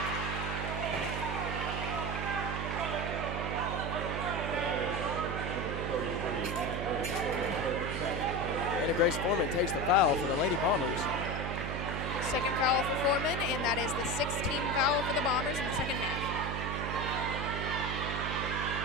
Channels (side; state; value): right; noise; hum, 3 dB below the sound